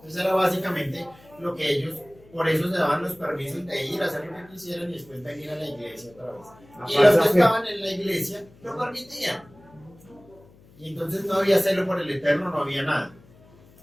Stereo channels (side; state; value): left; noise; hum, 26 dB below the sound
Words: era básicamente lo que ellos, por eso se daban los permisos de ir a hacer lo que quisieran y después venir a la iglesia otra vez. Y los que estaban en la iglesia lo permitían. Y entonces no había celo por el Eterno, no había nada.